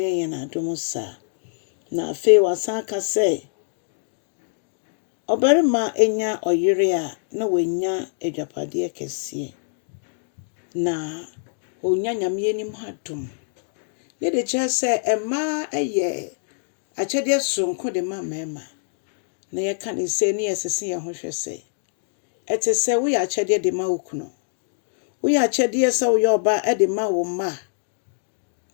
yen adom sa. Na afe wasan ka se obarima enya oyire a na wenya adwapade kese. Na onya nyame anim hadom. Ye de che se ema eye akyede sonko de ma mema. Na ye ka ne se ne yesese ye ho hwese. Ete se wo ya akyede de ma okuno. Wo ya akyede se wo yo ba e de ma wo ma.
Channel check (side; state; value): right; silent; digital silence